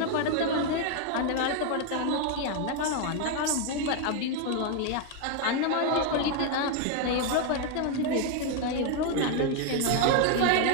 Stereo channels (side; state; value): both; different; correlation 0.01